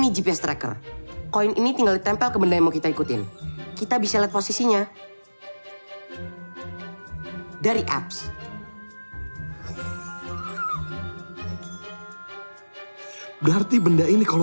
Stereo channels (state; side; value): inverted; both; correlation -1.00